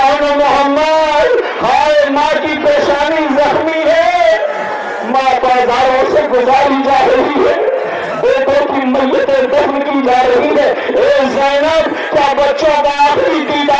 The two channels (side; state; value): both; identical; correlation 1.00